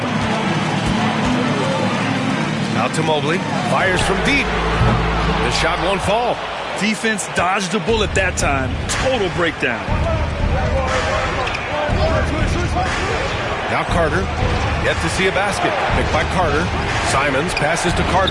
Out to Mobley. Fires from deep. The shot won't fall. Defense dodged the bullet that time. Total breakdown. Now Carter. Yet to see a basket. Picked by Carter. Simons passes to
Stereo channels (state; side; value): identical; both; correlation 1.00